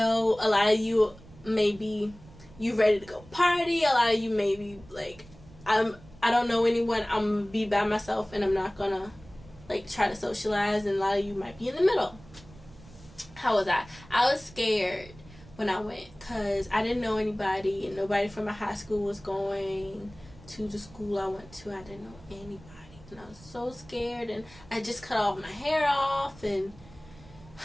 a lot of you maybe you ready to go party. A lot of you maybe like I don't know anyone. I'm gonna be by myself and I'm not gonna like try to socialize. And a lot of you might be in the middle. How was I? I was scared when I went because I didn't know anybody and nobody from my high school was going to the school I went to. I didn't know anybody and I was so scared, and I just cut all my hair off and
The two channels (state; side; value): noise; right; rumble, 21 dB below the sound